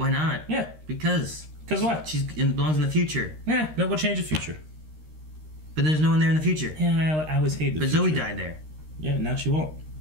not? Yeah, Because because what? belongs in the future. Yeah, that will change the future. But there's no one there in the future. Yeah, I always hate the But future. Zoe died there. Yeah, now she won't.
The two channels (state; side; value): late; left; 13 ms